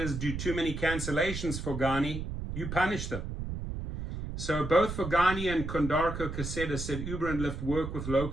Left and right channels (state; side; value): noise; right; rumble, 6 dB below the sound